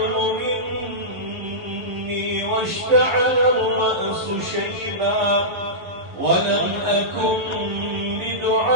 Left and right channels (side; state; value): left; late; 11 ms